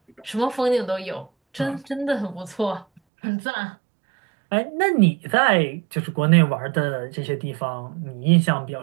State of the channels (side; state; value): left; drops out; at 3.0 s